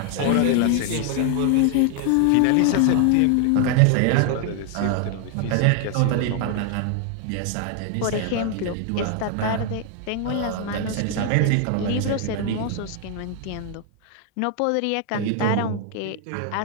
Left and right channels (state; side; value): different; both; correlation 0.00